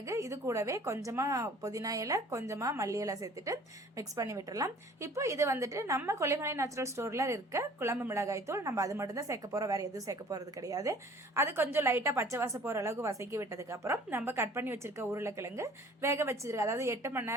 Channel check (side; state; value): both; normal; correlation 0.50